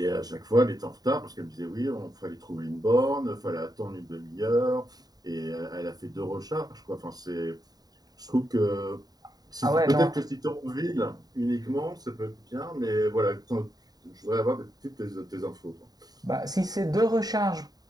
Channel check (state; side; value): late; left; 0.19 ms